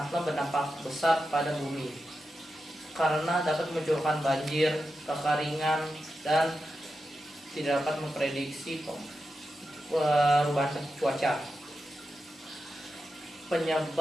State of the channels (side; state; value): both; normal; correlation 0.90